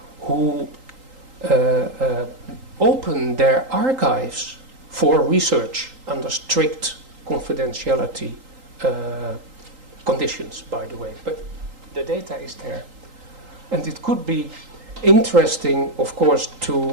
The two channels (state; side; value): late; left; 3.8 ms